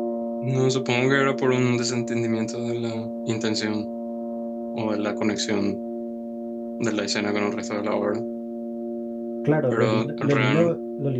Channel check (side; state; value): both; identical; correlation 1.00